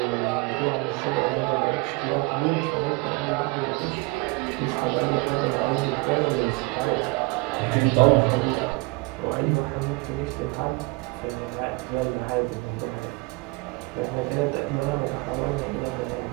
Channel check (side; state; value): left; quieter; 26.3 dB